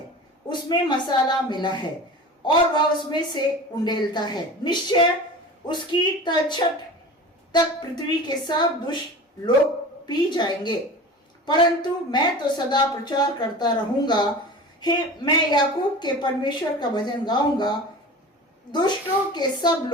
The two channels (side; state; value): both; normal; correlation 0.35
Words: उसमें मसाला मिला है और वह उसमें से उंडेलता है। निश्चय उसकी तलछट तक पृथ्वी के सब दुष्ट लोग पी जाएंगे, परंतु मैं तो सदा प्रचार करता रहूंगा। हे, मैं याकूब के परमेश्वर का भजन गाऊंगा। दुष्ट